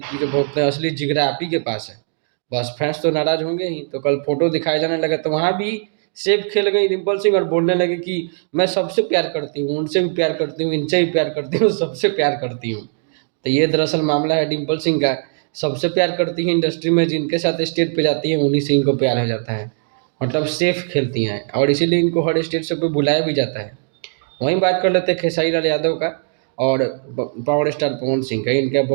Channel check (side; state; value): left; silent; 66 dB below the other